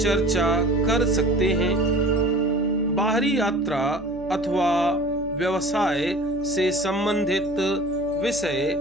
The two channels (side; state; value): right; noise; hum, 18 dB below the sound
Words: चर्चा कर सकते हैं। बाहरी यात्रा अथवा व्यवसाय से संबंधित विषय